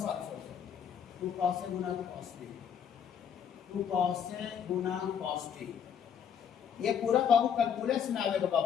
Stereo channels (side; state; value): right; quieter; 8.0 dB